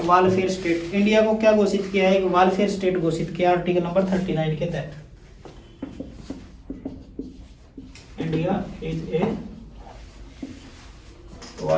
welfare state. India को क्या घोषित किया है? एक वेलफेयर स्टेट घोषित किया आर्टिकल नंबर 39 के तहत। India is a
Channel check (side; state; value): both; identical; correlation 1.00